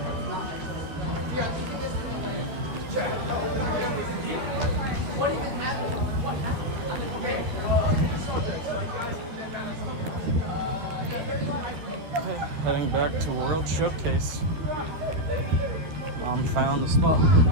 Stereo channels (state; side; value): late; left; 13 ms